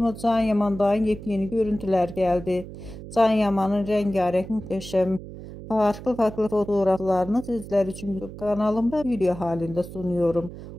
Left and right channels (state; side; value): noise; right; hum, 13 dB below the sound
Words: Can Yaman'dan yepyeni görüntüler geldi. Can Yaman'ın rengarenk muhteşem farklı fotoğraflarını sizler için YouTube kanalımda video halinde sunuyorum.